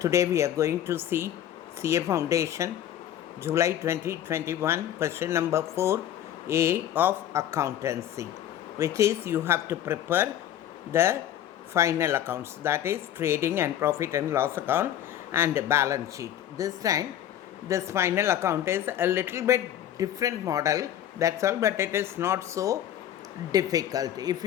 we are going to see CA Foundation July 2021 question number 4A of accountancy, which is you have to prepare the final accounts, that is trading and profit and loss account and balance sheet. This time this final account is a little bit different model, that's all, but it is not so difficult. If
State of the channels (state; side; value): quieter; right; 11.2 dB